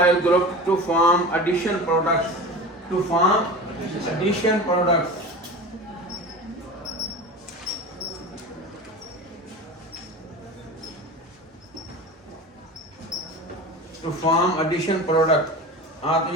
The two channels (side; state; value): both; normal; correlation 0.31